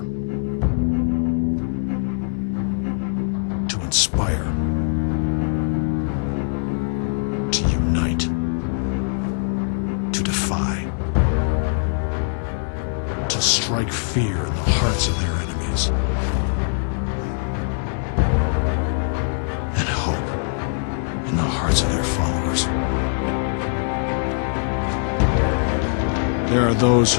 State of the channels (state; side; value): silent; right; digital silence